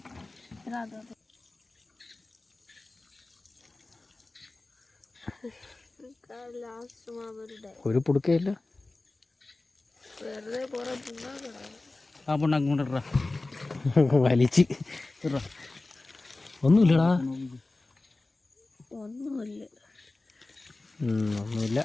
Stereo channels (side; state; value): right; quieter; 3.1 dB